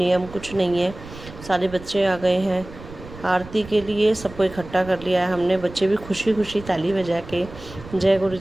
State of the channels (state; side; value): noise; right; rumble, 16 dB below the sound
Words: कुछ नहीं है। सारे बच्चे आ गए हैं आरती के लिए, सबको इकट्ठा कर लिया है हमने। बच्चे भी खुशी खुशी ताली बजा के जय गुरु